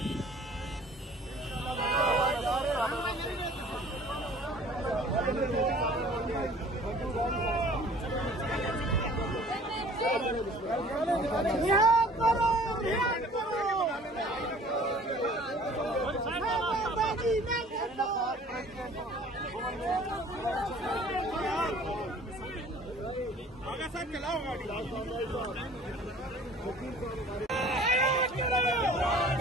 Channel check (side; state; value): both; normal; correlation 0.50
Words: आगे सर चलाओ गाड़ी।